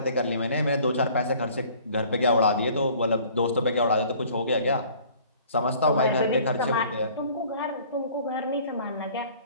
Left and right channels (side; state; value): both; inverted; correlation -0.52